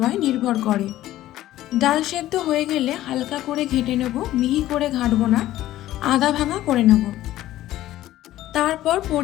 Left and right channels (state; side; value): quieter; right; 14.4 dB